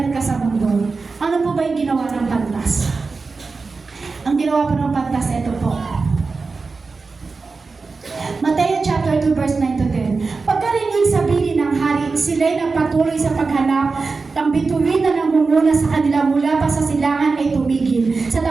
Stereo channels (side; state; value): left; quieter; 4.3 dB